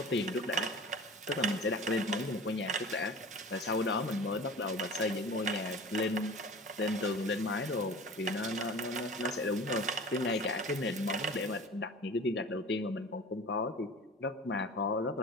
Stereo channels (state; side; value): normal; both; correlation 0.39